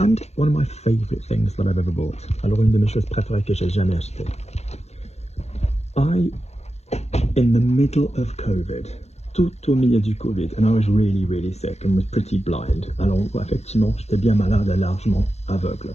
one of my favorite things that I've ever bought. Alors une de mes choses préférées que j'ai jamais achetées. In the middle of COVID, tout au milieu du Covid, and I was really sick and was pretty blind. Alors effectivement, j'étais bien malade et largement aveugle.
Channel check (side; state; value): right; late; 0.31 ms